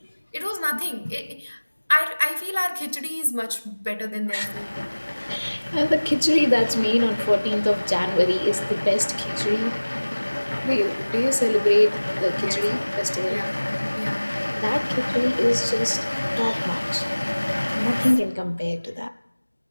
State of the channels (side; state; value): both; inverted; correlation -1.00